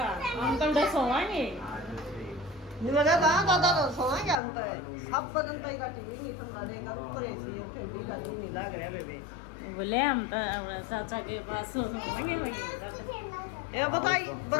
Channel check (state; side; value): drops out; right; at 4.4 s